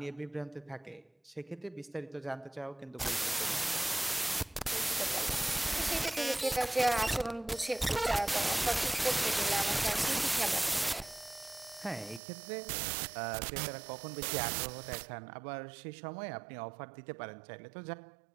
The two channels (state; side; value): drops out; left; at 12.2 s